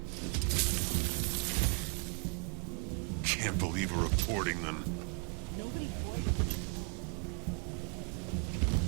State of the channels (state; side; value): quieter; left; 36.7 dB